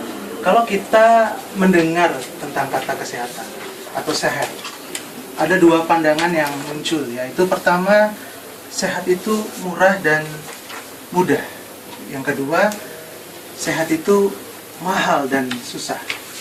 Kalau kita mendengar tentang kata kesehatan atau sehat, ada dua pandangan yang muncul, yaitu pertama, sehat itu murah dan mudah. Yang kedua, sehat itu mahal dan susah.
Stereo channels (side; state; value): both; identical; correlation 1.00